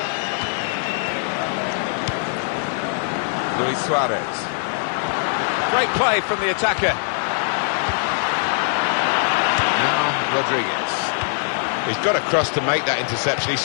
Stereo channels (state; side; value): silent; right; digital silence